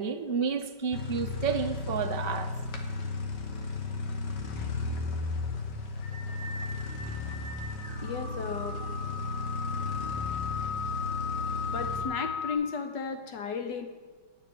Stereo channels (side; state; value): right; late; 5.2 ms